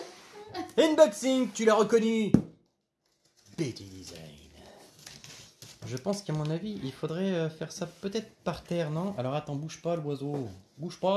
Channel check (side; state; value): both; identical; correlation 1.00